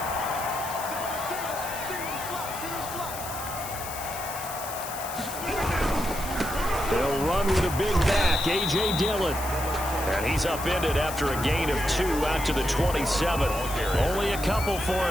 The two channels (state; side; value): noise; left; hiss, 10 dB below the sound